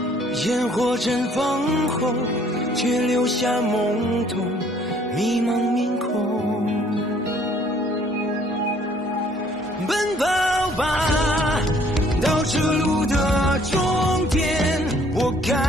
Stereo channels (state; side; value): normal; both; correlation 0.60